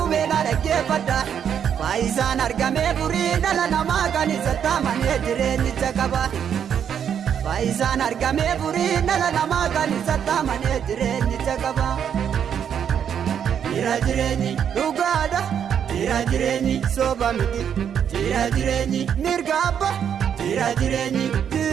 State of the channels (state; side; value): quieter; left; 8.4 dB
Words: beela dhaggeeffadha. Faayisaan argamee furii dhala namaa kan isatti amanee jireenyicha qaba. Faayisaan argamee furii dhala namaa kan isatti amanee jireenyicha qaba. Jira jireenyi dhugaadha. Jira jireenyi soba miti. Jira jireenyi mirga abbaa. Jira jireenyi